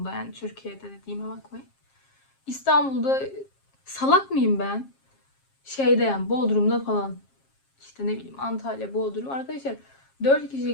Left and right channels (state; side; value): late; right; 7.4 ms